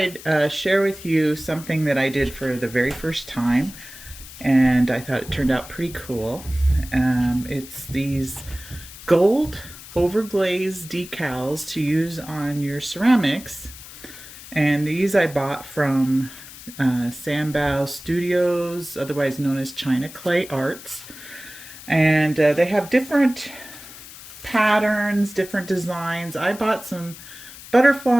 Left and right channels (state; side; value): noise; left; hiss, 16 dB below the sound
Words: share with you something that I did for the very first time, and I thought it turned out pretty cool. It's these gold overglaze decals to use on your ceramics, and these I bought from Sanbao Studios, otherwise known as China Clay Arts, and they have different patterns, different designs. I bought some